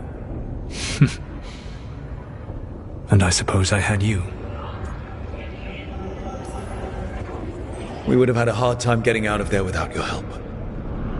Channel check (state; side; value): identical; both; correlation 1.00